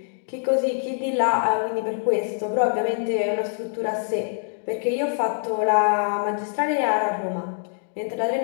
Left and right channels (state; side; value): silent; right; digital silence